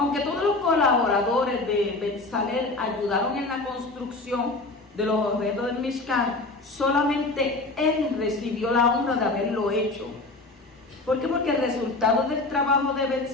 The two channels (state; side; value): quieter; right; 3.2 dB